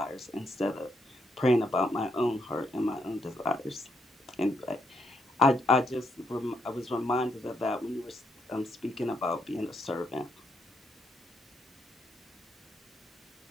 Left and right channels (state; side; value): normal; both; correlation 0.77